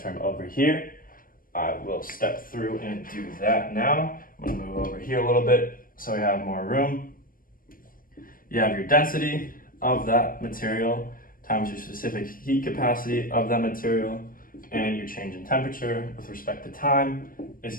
over here. I will step through and do that now. I'm gonna move over here a little bit so we have more room. You have your density of that material times your specific heat capacity of that material, and your change in temperature with respect to time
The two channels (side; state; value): right; late; 0.41 ms